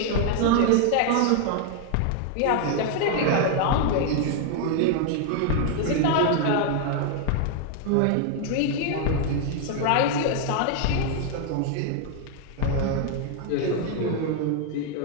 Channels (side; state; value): both; different; correlation 0.00